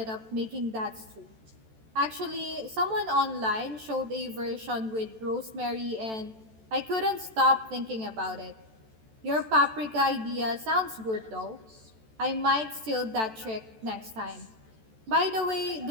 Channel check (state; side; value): late; left; 14 ms